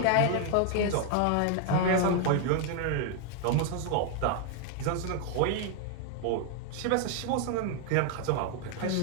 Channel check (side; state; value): both; different; correlation 0.00